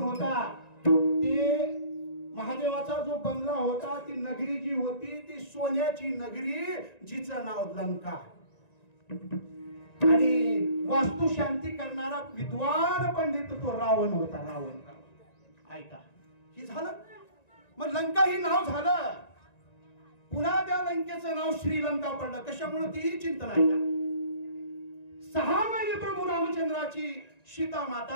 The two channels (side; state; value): right; late; 1.9 ms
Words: होता? ते महादेवाचा जो बंगला होता ती नगरी जी होती ती सोन्याची नगरी जिचं नाव लंका. आणि वास्तू शांती करणारा विद्वान पंडित तो रावण होता. रावण. ऐका हे झालं. मग लंका ही नाव झालं. पुन्हा त्या लंकेचं नाव श्रीलंका पडलं. कशामुळे तीही चिंतन आहे का. 6 महिने प्रभू रामचंद्राची सीता